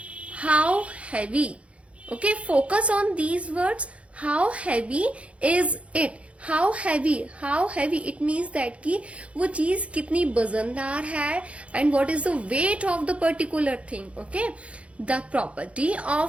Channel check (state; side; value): late; left; 0.062 ms